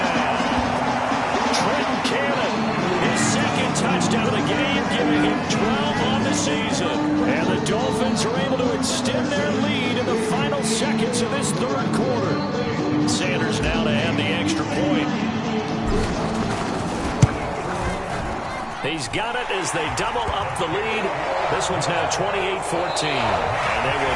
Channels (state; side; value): identical; both; correlation 1.00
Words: Trenton Cannon, his 2nd touchdown of the game, giving him 12 on the season. And the Dolphins are able to extend their lead in the final seconds of this 3rd quarter. Sanders now to add the extra point. He's got it as they double up the lead. This one's now 28-14. And they